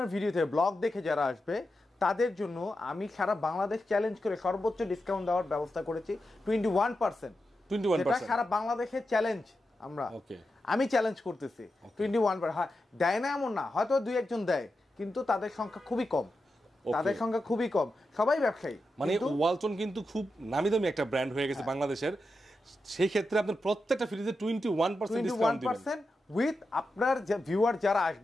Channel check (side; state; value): both; normal; correlation 0.89